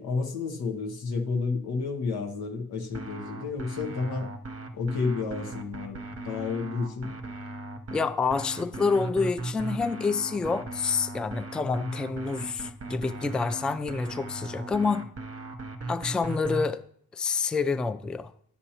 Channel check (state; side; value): quieter; right; 3.6 dB